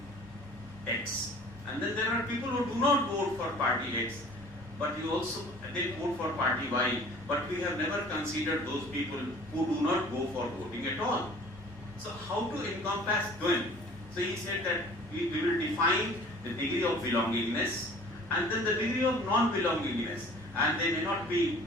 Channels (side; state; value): both; normal; correlation 0.48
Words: X, and then there are people who do not vote for party X, but they vote for party Y, but we have never considered those people who do not go for voting at all. So how to encompass them? So he said that we will define the degree of belongingness and then the degree of non-belongingness, and they may not be